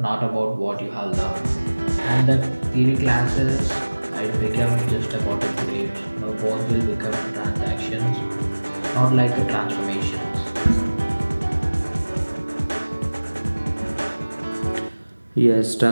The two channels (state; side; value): inverted; both; correlation -1.00